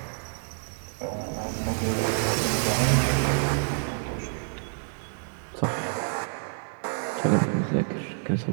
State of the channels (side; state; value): left; silent; digital silence